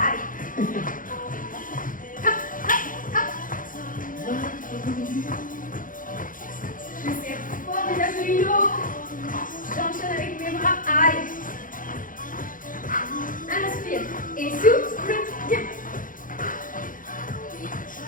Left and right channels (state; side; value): late; right; 0.39 ms